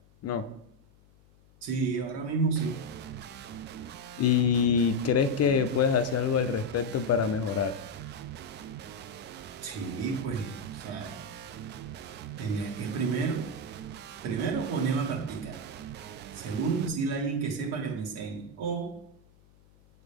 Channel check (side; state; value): left; noise; hum, 29 dB below the sound